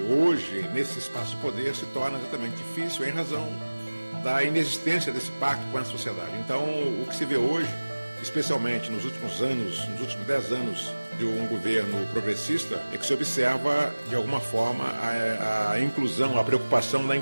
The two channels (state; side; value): inverted; both; correlation -1.00